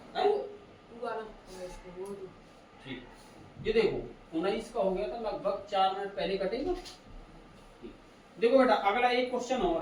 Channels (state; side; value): identical; both; correlation 1.00